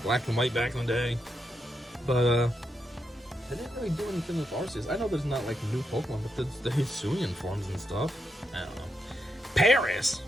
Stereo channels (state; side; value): normal; both; correlation 0.83